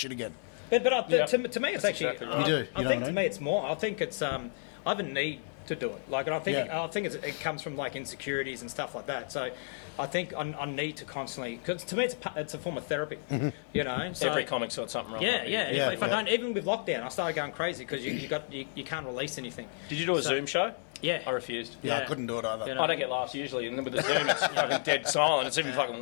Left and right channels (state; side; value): silent; right; digital silence